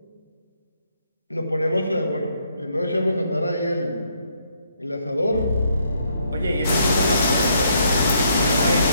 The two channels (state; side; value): inverted; both; correlation -0.71